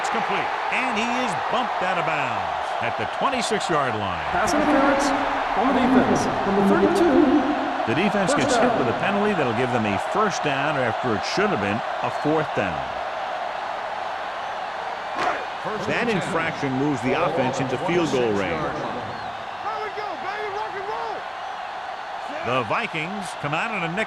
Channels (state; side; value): identical; both; correlation 1.00